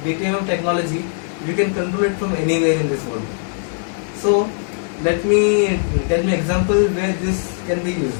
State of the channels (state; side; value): silent; right; 66 dB below the other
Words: DTMF technology, you can control it from anywhere in this world. So let me tell me example where this can be